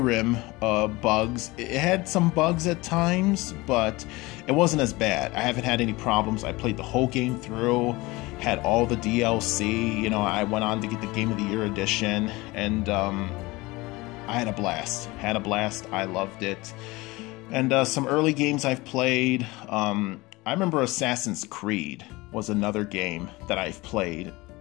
bugs. It had some bugs at times, but it wasn't as bad. I haven't had any problems. I played the whole game through, had all the DLC. You know, I went on to get the Game of the Year edition, and I had a blast. I loved it. And some early games I've played. I remember Assassin's Creed was another game that I've played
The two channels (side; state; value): right; quieter; 21.9 dB